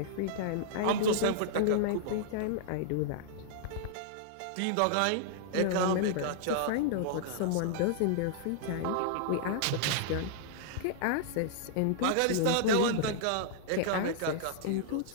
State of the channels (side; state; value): both; different; correlation -0.01